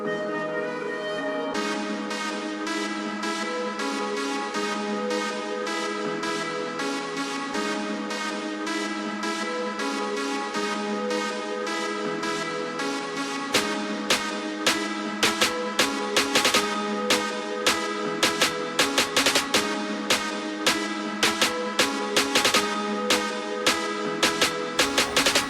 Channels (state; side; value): identical; both; correlation 1.00